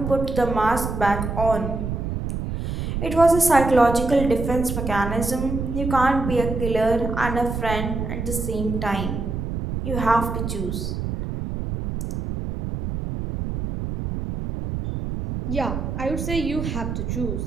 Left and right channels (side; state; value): right; noise; rumble, 4 dB below the sound